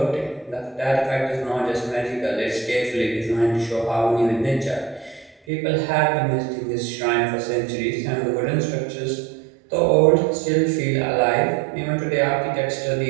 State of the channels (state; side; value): drops out; left; at 5.4 s